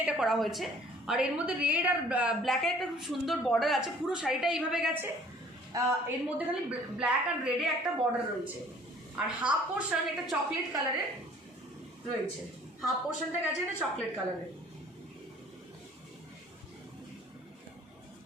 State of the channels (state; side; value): normal; both; correlation 0.54